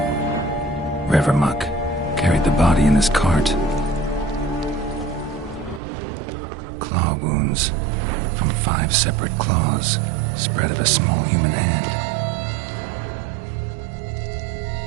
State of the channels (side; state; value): left; drops out; at 5.8 s